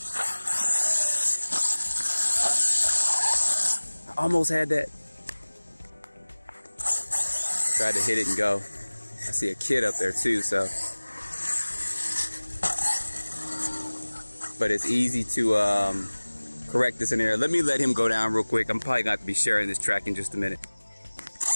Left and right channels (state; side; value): inverted; both; correlation -1.00